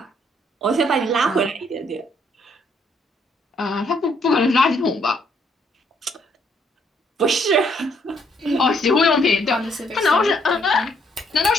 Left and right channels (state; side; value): normal; both; correlation 0.69